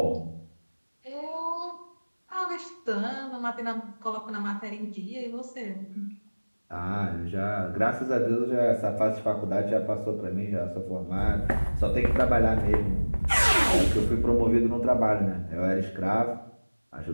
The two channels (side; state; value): both; inverted; correlation -1.00